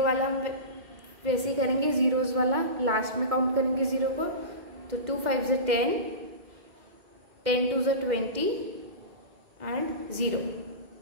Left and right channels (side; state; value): left; late; 2.1 ms